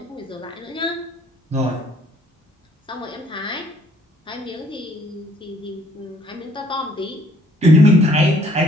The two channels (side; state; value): both; normal; correlation 0.61